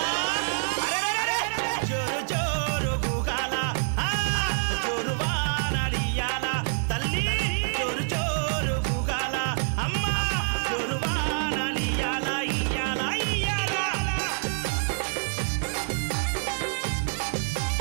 అరెరెరెరె జోరు జోరు గుగాల జోరు వానలియాల తల్లి జోరు జోరు గుగాల అమ్మ జోరు వానలియాల ఇయ్యాల ఇయ్యాల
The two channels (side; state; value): left; silent; 60 dB below the other